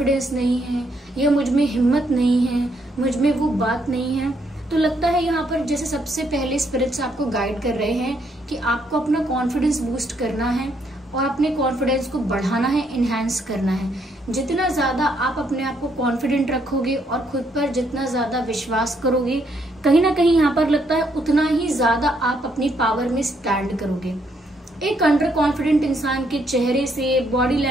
नहीं है या मुझ में हिम्मत नहीं है, मुझ में वो बात नहीं है। तो लगता है यहाँ पर जैसे सबसे पहले स्पिरिट्स आपको गाइड कर रहे हैं कि आपको अपना कॉन्फिडेंस बूस्ट करना है और अपने कॉन्फिडेंस को बढ़ाना है, इनहैंस करना है। जितना ज्यादा आप अपने आप को कॉन्फिडेंट रखोगे और खुद पर जितना ज्यादा विश्वास करोगे, कहीं ना कहीं यहाँ पर लगता है उतना ही ज्यादा आप अपनी पावर में स्टैंड करोगे। एक अंडर कॉन्फिडेंट इंसान के चेहरे से, बॉडी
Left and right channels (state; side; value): normal; both; correlation 0.73